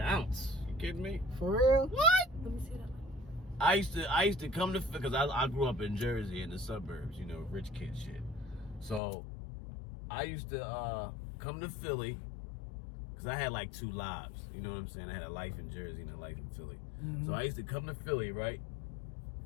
ounce. You kidding me? For real? What? Let me see that. I used to come to, because I grew up in Jersey in the suburbs, you know, rich kid shit. So I used to come to Philly because I had like 2 lives. You know what I'm saying? I had a life in Jersey and a life in Philly. So I used to come to Philly, right?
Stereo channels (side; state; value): right; drops out; at 9.0 s